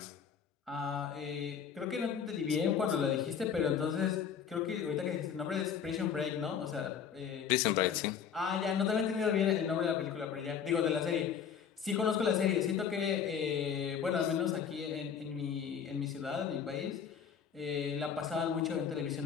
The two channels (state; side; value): quieter; right; 7.6 dB